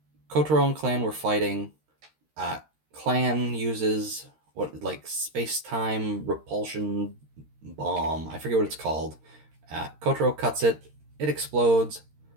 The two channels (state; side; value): late; left; 13 ms